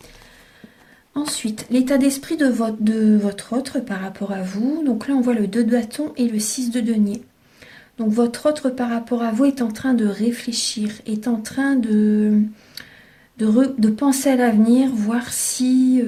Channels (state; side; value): identical; both; correlation 1.00